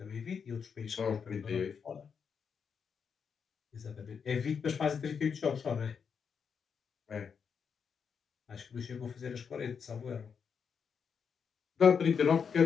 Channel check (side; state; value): right; quieter; 6.5 dB